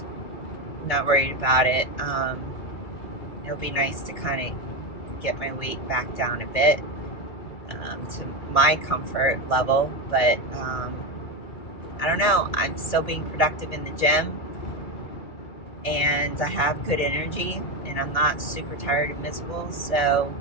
not worried about it. It'll be nice to kind of get my weight back down a bit to my comfort level, but I don't know. I'm still being productive in the gym, and I have good energy, and I'm not super tired and miserable, so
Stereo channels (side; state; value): right; late; 2.3 ms